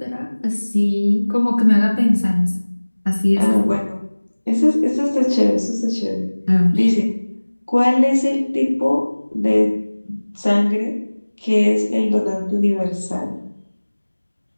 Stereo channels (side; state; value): both; inverted; correlation -1.00